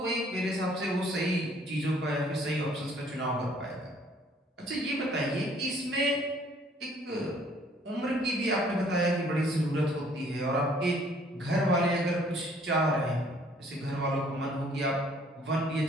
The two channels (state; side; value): normal; both; correlation 0.60